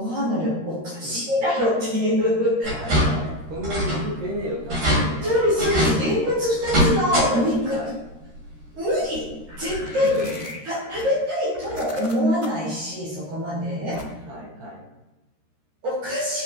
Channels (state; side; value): late; left; 13 ms